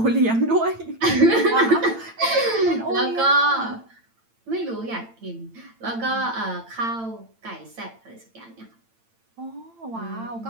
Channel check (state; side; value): late; left; 8.9 ms